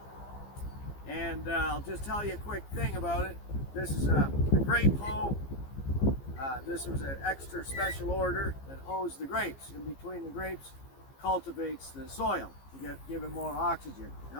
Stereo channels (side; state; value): right; late; 15 ms